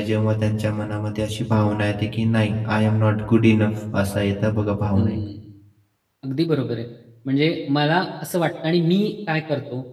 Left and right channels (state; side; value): identical; both; correlation 1.00